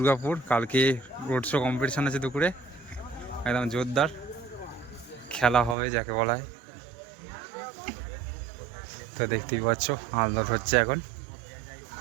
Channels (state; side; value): drops out; left; at 5.8 s